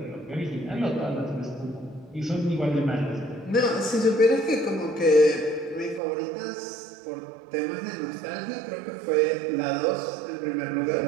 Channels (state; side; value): drops out; left; at 6.0 s